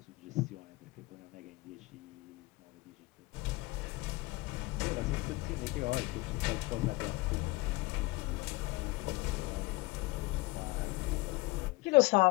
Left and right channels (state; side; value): quieter; right; 22.3 dB